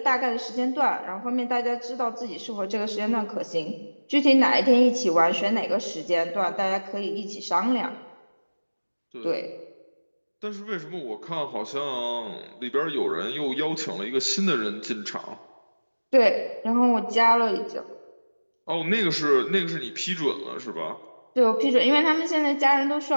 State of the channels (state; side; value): inverted; both; correlation -1.00